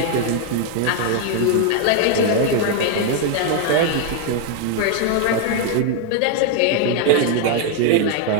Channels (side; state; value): both; different; correlation 0.00